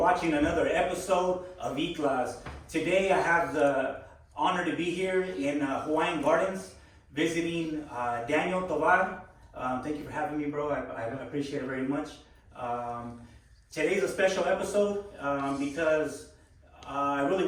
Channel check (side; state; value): both; identical; correlation 1.00